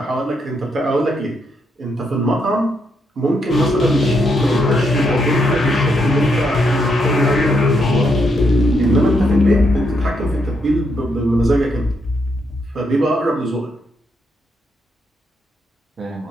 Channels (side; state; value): both; normal; correlation 0.78